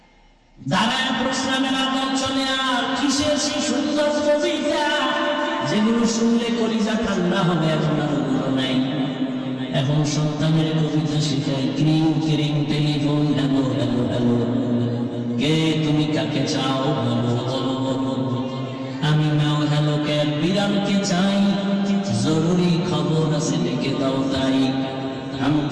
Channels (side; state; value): both; identical; correlation 1.00